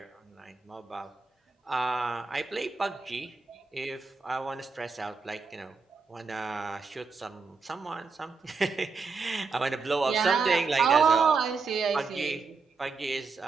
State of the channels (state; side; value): quieter; left; 4.6 dB